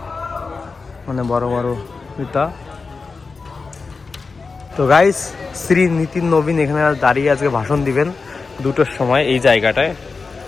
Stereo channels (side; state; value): right; quieter; 4.4 dB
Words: মানে বড় বড় নেতা। তো গাইস, শ্রী নিতিন নবীন এখানে দাঁড়িয়ে আজকে ভাষণ দিবেন 2টোর সময় এই জায়গাটায়।